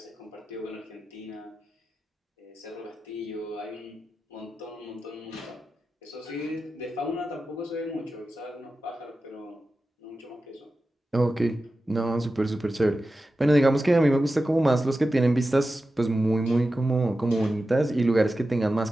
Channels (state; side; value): normal; both; correlation 0.93